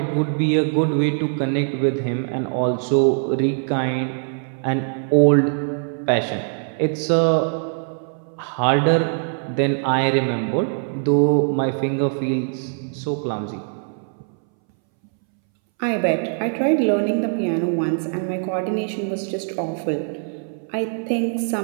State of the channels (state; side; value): silent; left; 63 dB below the other